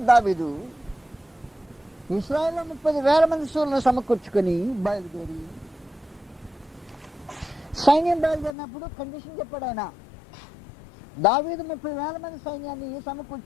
దావీదు ఇశ్రాయేలులో 30,000 మంది శూరులను సమకూర్చుకొని బయలుదేరి, సైన్యం బయలుదేరినప్పుడు కండిషన్ చెప్పాడు ఆయన. దావీదు 30,000 మంది సైన్యాన్ని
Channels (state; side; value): drops out; right; at 8.6 s